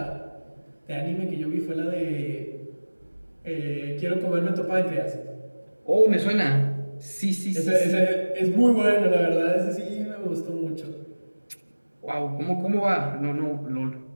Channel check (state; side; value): inverted; both; correlation -1.00